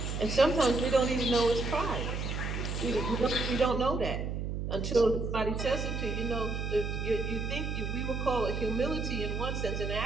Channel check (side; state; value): right; noise; hum, 3 dB below the sound